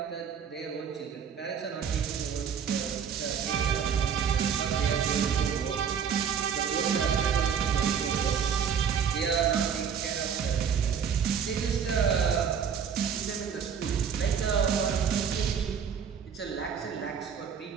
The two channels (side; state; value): left; quieter; 7.3 dB